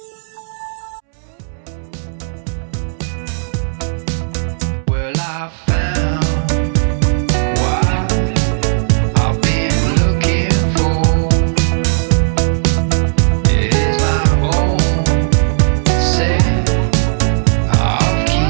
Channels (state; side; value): silent; left; 70 dB below the other